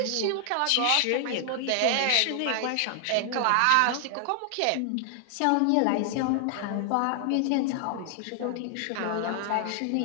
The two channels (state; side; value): different; both; correlation 0.00